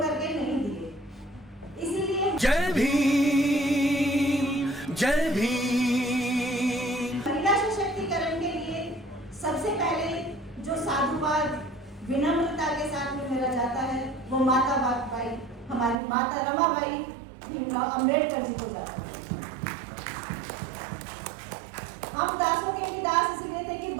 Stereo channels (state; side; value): drops out; left; at 16.0 s